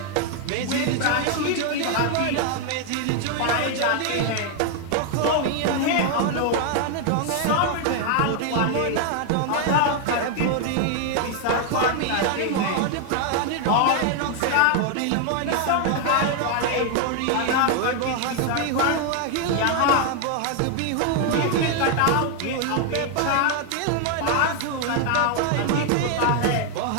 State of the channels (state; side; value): different; both; correlation 0.00